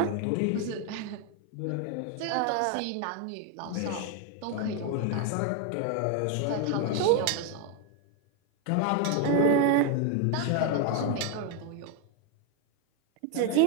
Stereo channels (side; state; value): both; different; correlation 0.01